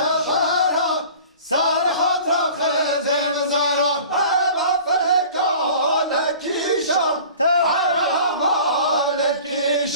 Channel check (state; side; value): inverted; both; correlation -0.43